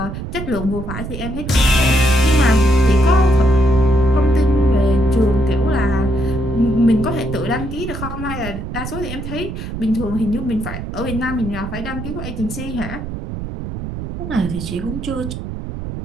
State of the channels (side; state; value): right; noise; rumble, 7 dB below the sound